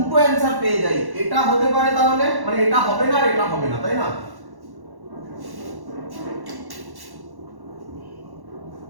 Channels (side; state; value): left; late; 1.1 ms